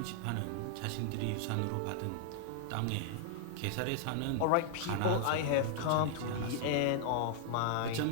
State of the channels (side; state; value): both; different; correlation -0.01